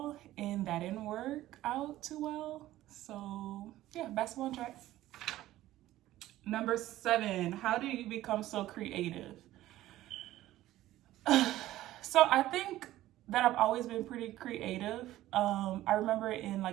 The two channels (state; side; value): quieter; left; 15.0 dB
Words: and that didn't work out too well. So yeah, basketball and track. Number 7, how do you become so creative? So I think that I've always been pretty creative. I remember in